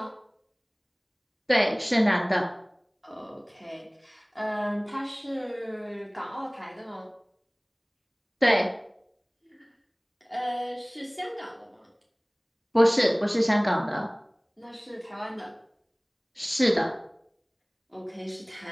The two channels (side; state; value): both; identical; correlation 1.00